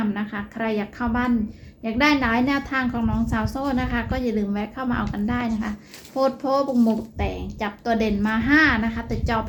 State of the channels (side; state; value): both; identical; correlation 1.00